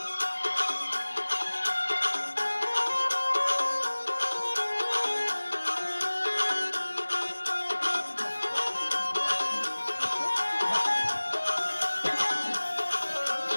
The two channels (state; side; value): inverted; both; correlation -1.00